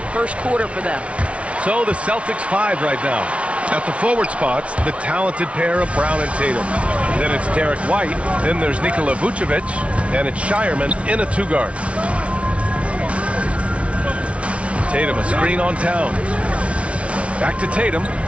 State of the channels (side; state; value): left; late; 0.062 ms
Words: first quarter for them. So the Celtics 5 right now. At the forward spots, the talented pair of Brown and Tatum. Then it's Derek White. Then there's Nikola Vucevic. And it's Shireman in a 2-guard. Tatum, a screen on Towns. Back to Tatum.